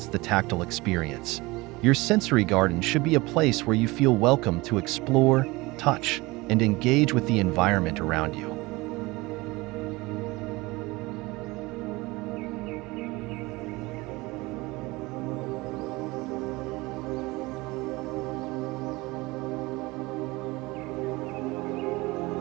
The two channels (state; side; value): quieter; left; 22.3 dB